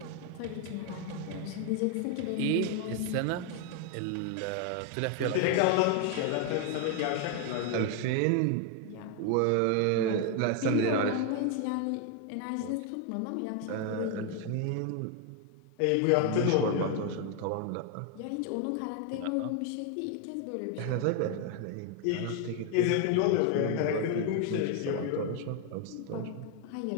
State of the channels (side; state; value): both; different; correlation 0.01